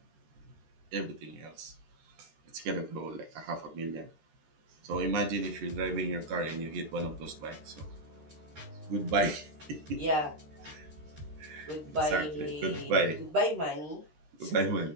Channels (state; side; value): late; left; 13 ms